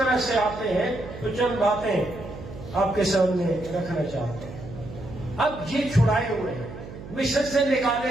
سے آتے ہیں, تو چند باتیں آپ کے سامنے رکھنا چاہتے ہیں. اب یہ چھڑائے ہوئے ہیں, مصر سے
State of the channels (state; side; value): noise; right; hum, 13 dB below the sound